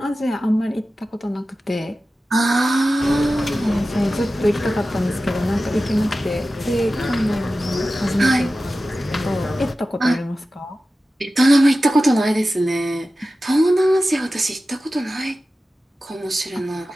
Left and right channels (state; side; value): normal; both; correlation 0.94